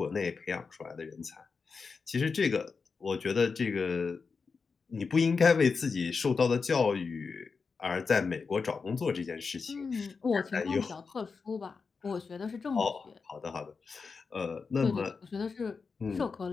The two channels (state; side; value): quieter; right; 5.0 dB